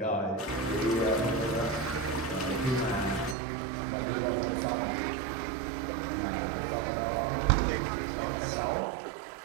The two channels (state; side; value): drops out; left; at 3.4 s